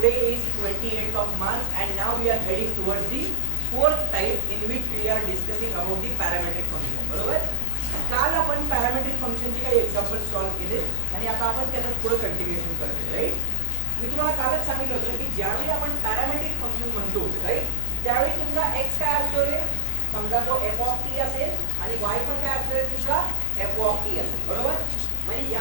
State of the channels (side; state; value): both; different; correlation 0.00